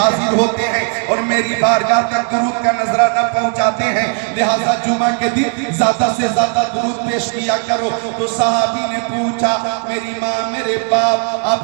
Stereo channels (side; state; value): left; quieter; 38.8 dB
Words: होते हैं और मेरी बारगाह तक दुरूद का नजराना पहुंचाते हैं, लिहाजा जुमा के दिन ज्यादा से ज्यादा दुरूद पेश किया करो। तो सहाबी ने पूछा, मेरी माँ मेरे बाप